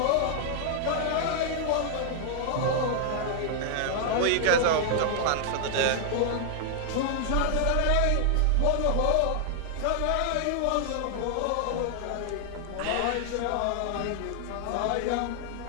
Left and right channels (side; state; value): both; different; correlation 0.00